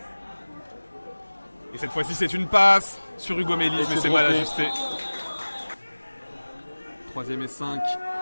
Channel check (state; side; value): inverted; both; correlation -1.00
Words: Et cette fois-ci, c'est une passe sur Hugo Mélis, mais c'est mal ajusté. 3e et 5.